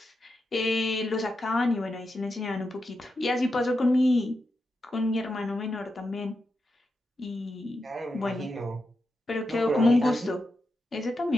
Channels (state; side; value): normal; both; correlation 0.87